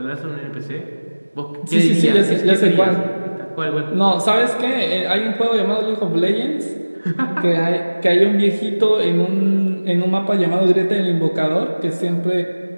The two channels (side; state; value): both; inverted; correlation -1.00